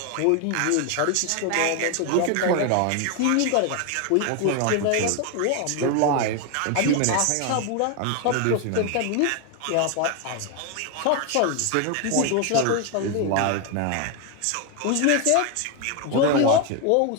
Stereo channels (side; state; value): both; different; correlation 0.01